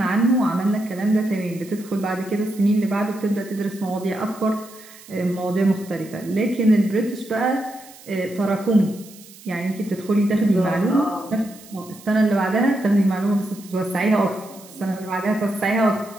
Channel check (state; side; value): noise; right; hiss, 21 dB below the sound